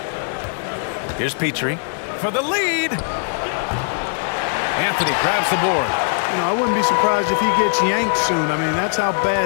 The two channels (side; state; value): right; silent; digital silence